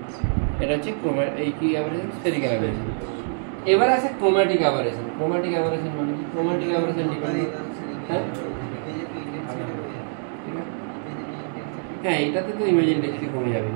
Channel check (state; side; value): silent; left; digital silence